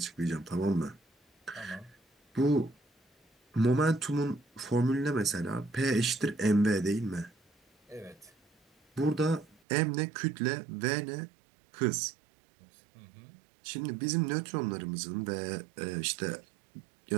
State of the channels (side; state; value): left; drops out; at 9.6 s